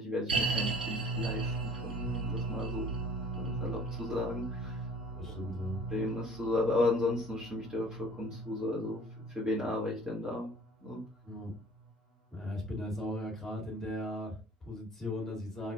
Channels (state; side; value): normal; both; correlation 0.49